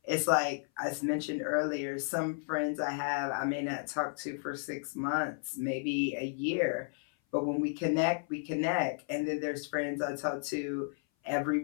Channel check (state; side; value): silent; right; 56 dB below the other